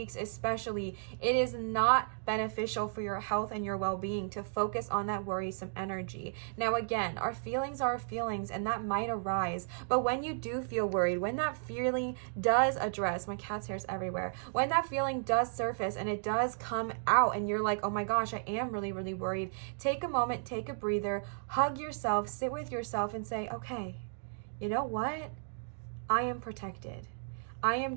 especially, it is not beneficial for your health and your well-being to focus on that worrisome energy. Now again, our feelings are feelings, and that might arise, but when you do feel worried, when that feeling does address, my cat's hair's everywhere, when that feeling does surface and it does come out and you're like, oh my gosh, I am really, really worried, take a moment, take a breather, hug yourself, sit with yourself and say, okay, you know what? I am protected. I am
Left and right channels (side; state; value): left; silent; digital silence